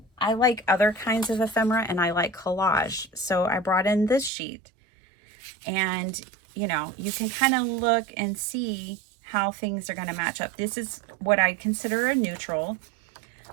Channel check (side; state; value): left; drops out; at 4.3 s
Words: like other kinds of ephemera and I like collage. So I brought in this sheet, and you know, you can kind of look and see how things are going to match up. This is what I consider a neutral,